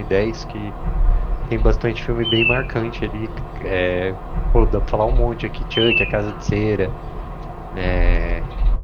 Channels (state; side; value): identical; both; correlation 1.00